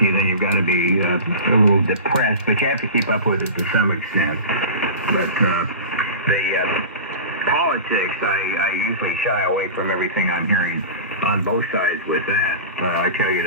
then you've got to be a little depressed. But you have to keep up with it to some extent. But the politics, I usually shy away from everything I'm hearing on both sides with that. I tell you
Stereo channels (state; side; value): inverted; both; correlation -0.31